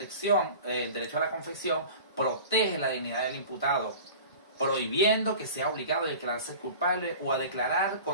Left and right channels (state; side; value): inverted; both; correlation -0.39